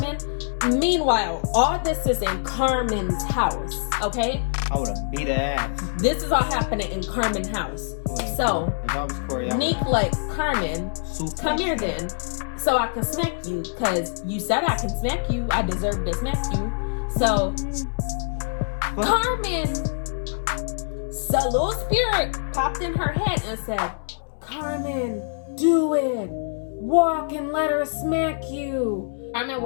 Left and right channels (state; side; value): silent; right; 62 dB below the other